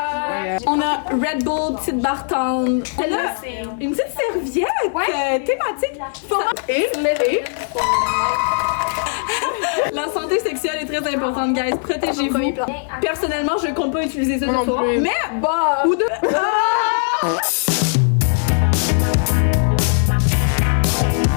On a Red Bull, petite barre tendre. Elle a une petite serviette thématique. Et la santé sexuelle est très importante, guys. Protégez-vous. Personnellement, je compte pas utiliser ça ce soir. Mais, bah, ou de...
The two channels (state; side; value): silent; right; digital silence